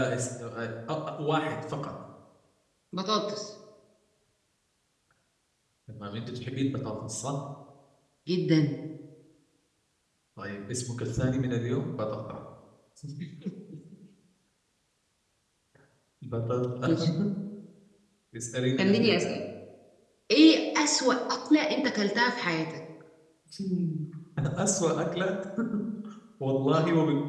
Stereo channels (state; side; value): identical; both; correlation 1.00